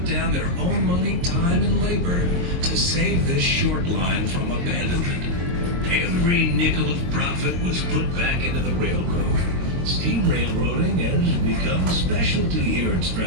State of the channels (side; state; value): left; late; 22 ms